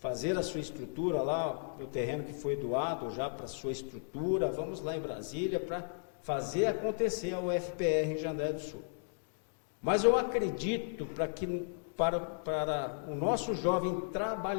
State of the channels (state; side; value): silent; right; digital silence